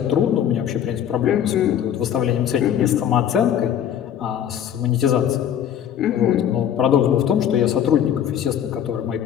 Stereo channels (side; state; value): right; quieter; 9.7 dB